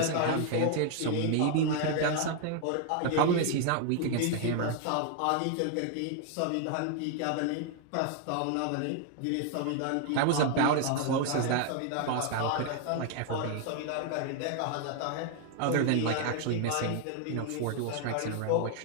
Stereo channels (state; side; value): different; both; correlation 0.00